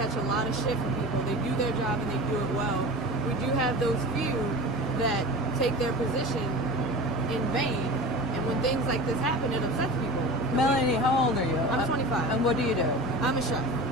a lot of shit from people. They do their job and they do it well. We do have those few that take their position in vain, and when things like this happen, it upsets people. Melanie, how old are you? I'm 25. And what do you do? I'm a chef.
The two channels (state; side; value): normal; both; correlation 0.32